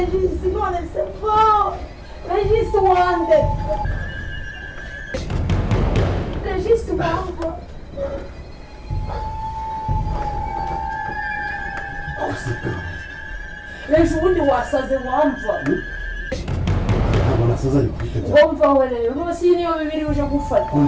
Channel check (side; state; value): both; identical; correlation 1.00